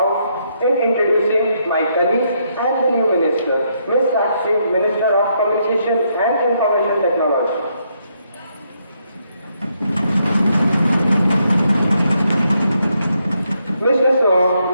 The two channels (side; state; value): both; inverted; correlation -0.76